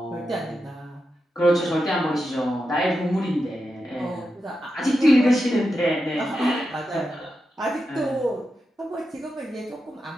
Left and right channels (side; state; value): both; normal; correlation 0.88